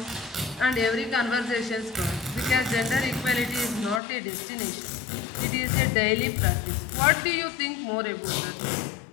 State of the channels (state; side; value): drops out; right; at 4.0 s